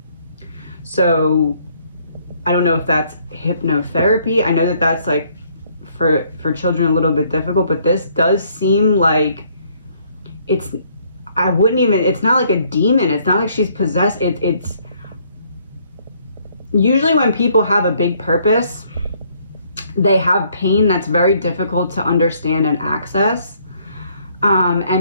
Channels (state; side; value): inverted; both; correlation -0.65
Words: So I don't know if that's hypnotherapy. I know that that's like for children a little bit difficult, but this does seem like it's not like a demon. It's not like she's possessed. It's usually when people have a big purpose, they have pain that's very difficult to understand and access.